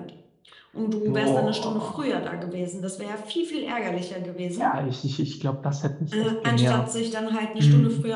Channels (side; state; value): both; identical; correlation 1.00